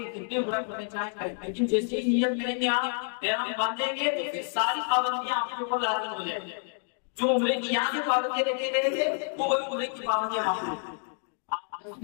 جتنے عمرہ کرنے چاہیں گے لیکن جیسے ہی نیت کریں گے آپ احرام باندھیں گے تو پھر ساری پابندیاں آپ کے اوپر لازم ہو جائیں گی. جو عمرے کی یہاں سے پابندیاں رکھے گئے تھے وہ وہی عمرے کی پابندیاں وہاں ہوں.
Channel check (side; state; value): right; silent; digital silence